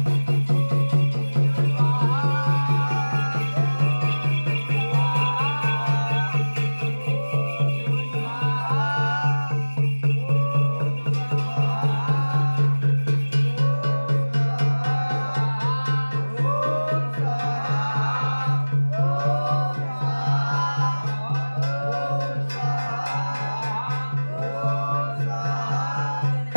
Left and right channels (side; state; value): both; inverted; correlation -1.00